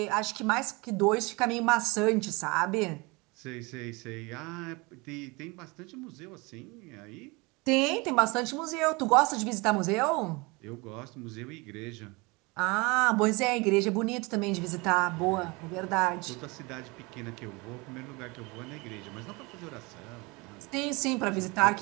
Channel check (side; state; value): left; quieter; 26.0 dB